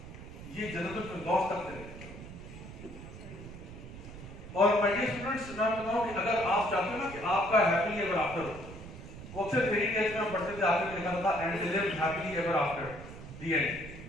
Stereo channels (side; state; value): right; noise; rumble, 13 dB below the sound